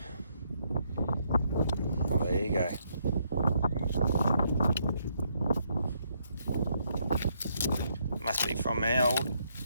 Well, there you go. Must be from our old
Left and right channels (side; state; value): both; inverted; correlation -0.74